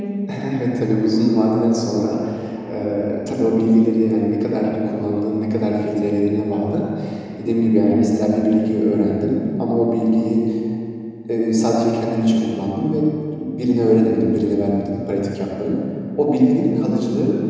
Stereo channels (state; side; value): identical; both; correlation 1.00